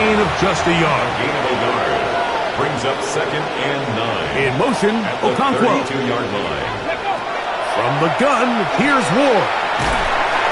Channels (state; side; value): identical; both; correlation 1.00